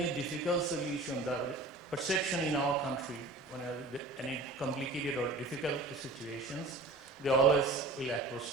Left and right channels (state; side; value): quieter; left; 3.1 dB